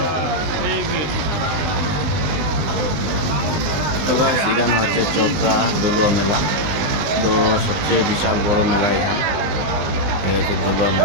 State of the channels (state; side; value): late; left; 20 ms